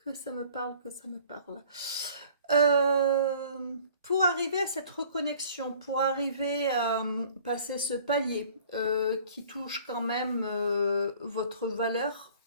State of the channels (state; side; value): inverted; both; correlation -0.51